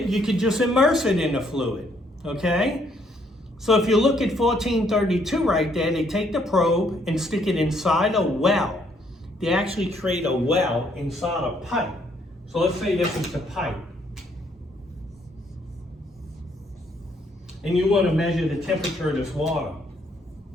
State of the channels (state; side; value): normal; both; correlation 0.69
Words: you could just immerse it in the fluid, okay? So if you look at 1432 right there, they take the probe and stick it inside a well. They actually create a well inside a pipe. So let's say this is the pipe. And you want to measure the temperature of this water.